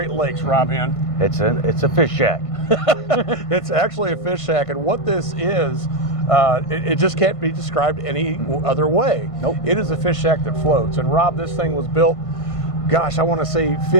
Lakes, Rob Hen. It's a fish shack. It's actually a fish shack, and what this is, it just can't be described any other way. Nope. It is a fish shack that floats, and Rob, this thing was built, gosh, I want to say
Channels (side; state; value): right; late; 1.5 ms